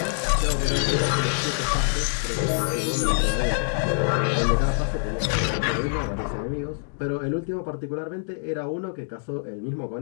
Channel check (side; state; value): right; silent; digital silence